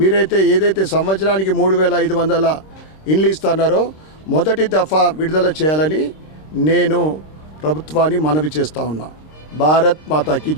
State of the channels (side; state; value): right; late; 26 ms